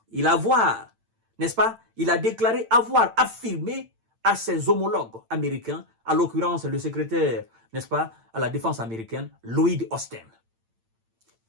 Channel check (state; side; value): late; left; 8.9 ms